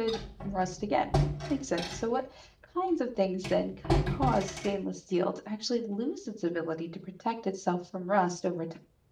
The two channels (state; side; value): identical; both; correlation 1.00